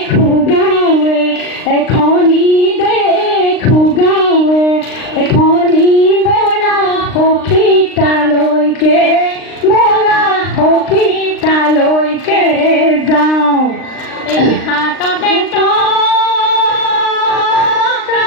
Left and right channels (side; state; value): right; late; 39 ms